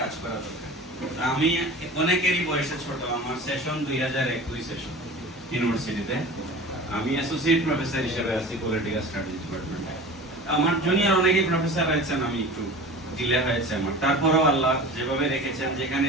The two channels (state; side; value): normal; both; correlation 0.37